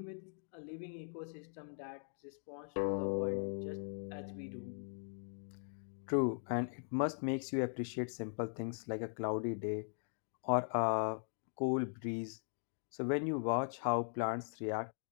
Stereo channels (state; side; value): silent; right; digital silence